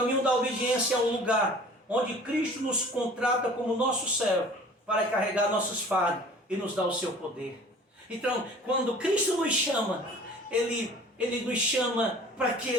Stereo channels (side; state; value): both; normal; correlation 0.47